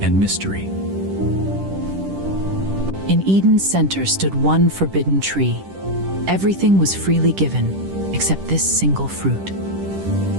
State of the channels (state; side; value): late; left; 10 ms